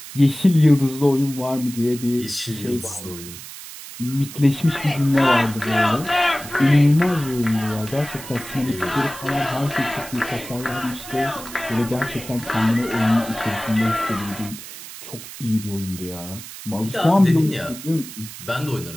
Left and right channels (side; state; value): right; noise; hiss, 13 dB below the sound